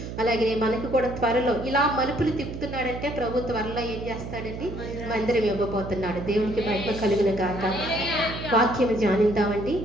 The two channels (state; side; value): noise; right; hum, 8 dB below the sound